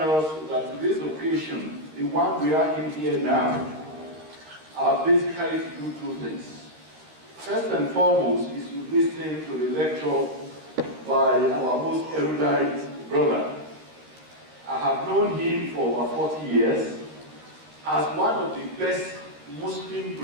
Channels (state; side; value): late; left; 13 ms